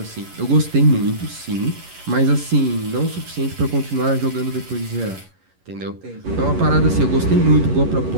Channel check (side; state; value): left; late; 11 ms